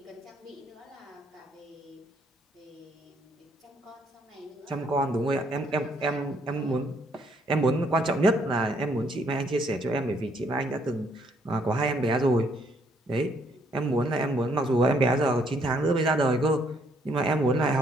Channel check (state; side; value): normal; both; correlation 0.69